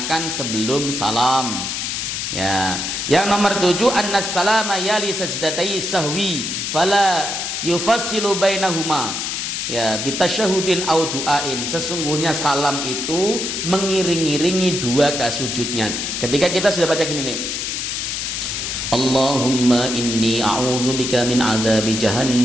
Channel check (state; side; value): noise; left; hiss, 3 dB below the sound